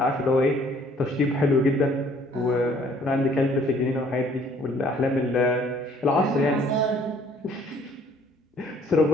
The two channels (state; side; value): normal; both; correlation 0.59